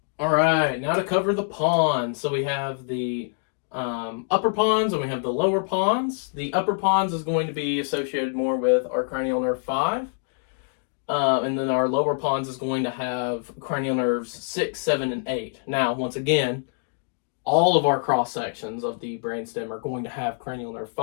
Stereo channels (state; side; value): silent; right; digital silence